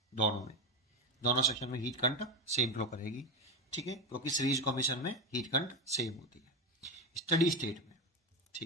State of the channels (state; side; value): normal; both; correlation 0.15